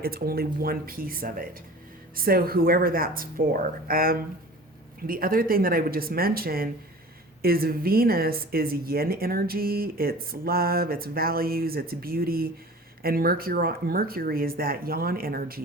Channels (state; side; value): normal; both; correlation 0.41